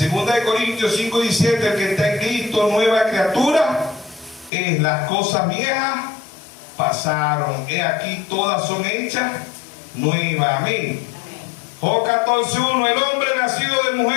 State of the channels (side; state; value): right; drops out; at 4.5 s